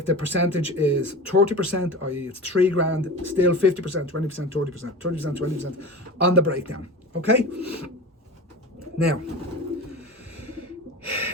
the percentage is 30%, i.e. it's 3 grand, still 50%, 20%, 30%, 30%, 20% on the breakdown. Okay? Now,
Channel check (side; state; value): both; normal; correlation 0.31